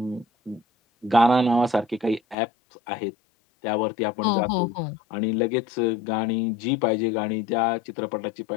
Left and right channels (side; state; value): right; drops out; at 2.4 s